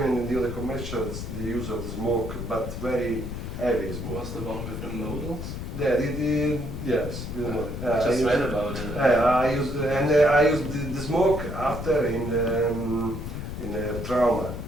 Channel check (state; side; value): noise; left; rumble, 6 dB below the sound